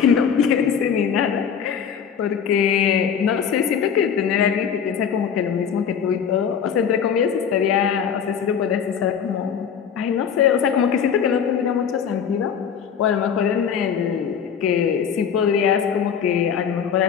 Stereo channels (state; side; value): quieter; right; 7.5 dB